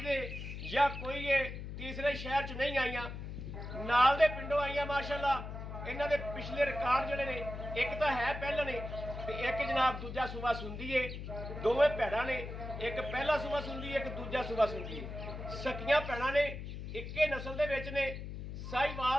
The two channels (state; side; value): noise; left; hum, 8 dB below the sound